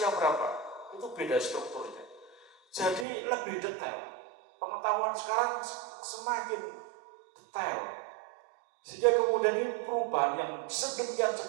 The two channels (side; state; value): left; drops out; at 3.1 s